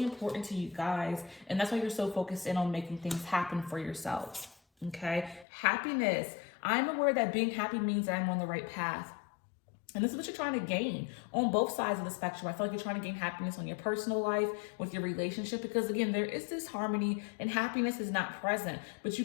important to you guys. And that's why you're so focused in on making things happen for yourselves. Okay. Happiness. I'm aware that being happy means that I'm on the right path. And this is what you're trying to gain on both sides of the spectrum. I feel like you're trying to gain happiness on your personal life, with your relationship, because again, there is this harmony and happiness is not present. But you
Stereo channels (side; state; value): right; drops out; at 5.5 s